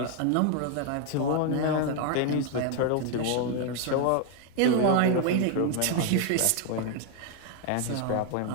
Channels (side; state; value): both; different; correlation 0.01